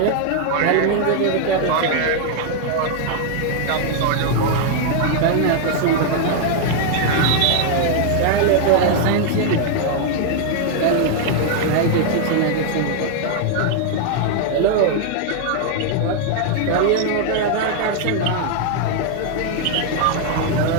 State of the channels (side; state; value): both; different; correlation 0.00